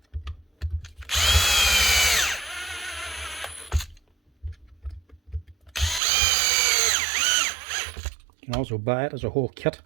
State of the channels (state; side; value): drops out; left; at 6.0 s